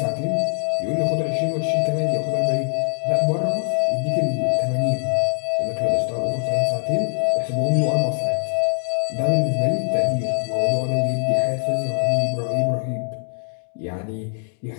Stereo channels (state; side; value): silent; right; digital silence